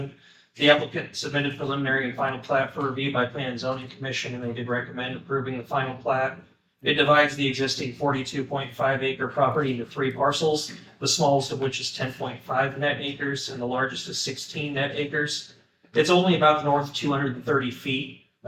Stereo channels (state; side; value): identical; both; correlation 1.00